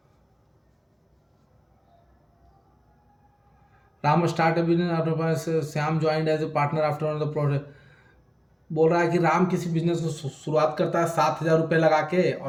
Ram start business, Shyam joined as a partner after the project. बोल रहा है कि राम किसी बिजनेस को शुरुआत करता है 7,000 रुपये लगा के,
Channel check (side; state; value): both; identical; correlation 1.00